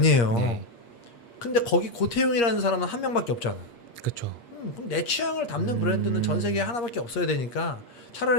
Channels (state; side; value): late; right; 8.5 ms